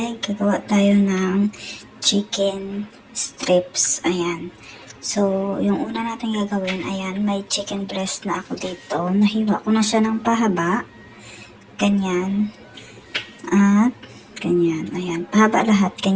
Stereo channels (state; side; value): identical; both; correlation 1.00